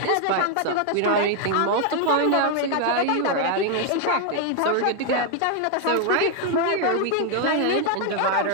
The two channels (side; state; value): both; different; correlation 0.00